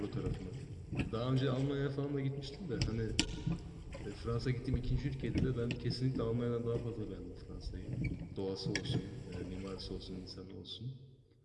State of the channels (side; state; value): both; identical; correlation 1.00